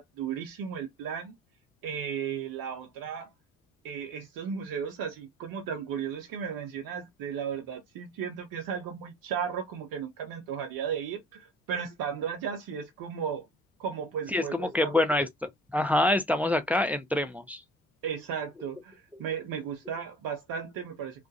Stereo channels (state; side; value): normal; both; correlation 0.42